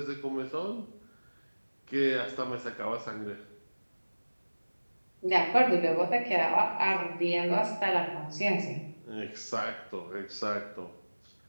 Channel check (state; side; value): inverted; both; correlation -1.00